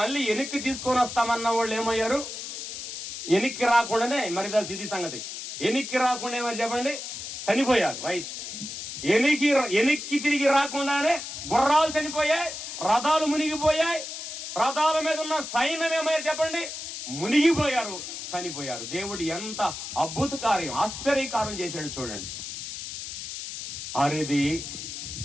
మళ్ళీ వెనక్కి తీసుకొని వస్తామన్న వాళ్ళు ఏమయ్యారు? వెనక్కి రాకుండానే, మరి ఇది సంగతి, వెనక్కి రాకుండా ఏమని చెప్పండి, చనిపోయారు. రైట్. వెనక్కి తిరిగి రాకుండానే గుర్రాలు చనిపోయాయి, రథాలు మునిగిపోయాయి, రథాల మీద ఉన్న సైన్యం ఏమయ్యారు చెప్పండి, మునిగిపోయారు, చనిపోయారు. దేవుడు ఎంత అద్భుత కార్యం, ఆశ్చర్యకార్యం చేశాడు చూడండి. ఆరేది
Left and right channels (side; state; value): left; noise; hiss, 8 dB below the sound